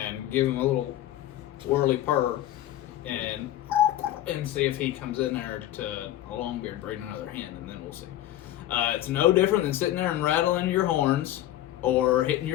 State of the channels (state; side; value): quieter; right; 13.5 dB